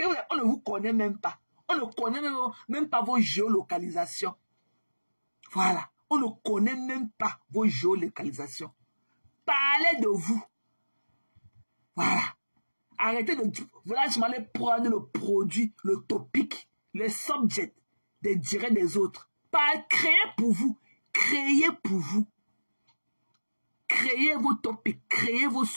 On ne vous connaît même pas. On ne connaît même pas vos géolocalisations. Voilà. On ne connaît même pas vos géolocalisations. Parlez de vous. Voilà. Arrêtez de... Voilà, je m'allais prendre le produit, le topic, le subject des directs des autres. Pas créer pour vous. Créez pour vous. Créez vos topics. Créez vos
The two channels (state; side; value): inverted; both; correlation -1.00